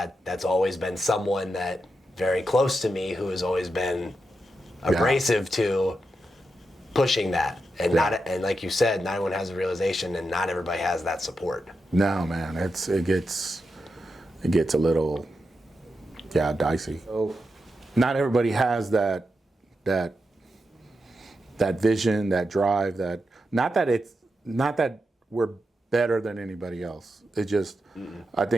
always been someone that very close to me who has always been abrasive to pushing that. And and like you said, not everyone has a realization, and not everybody has that support. No, man, it gets a little dicey. So not everybody has that vision, that drive, not that we're better than anybody else. It just I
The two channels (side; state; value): both; normal; correlation 0.87